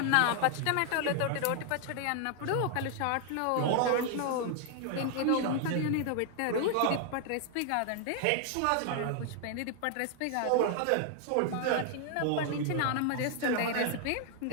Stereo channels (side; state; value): both; different; correlation 0.00